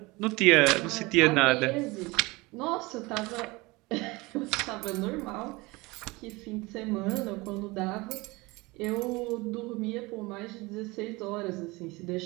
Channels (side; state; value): left; quieter; 23.3 dB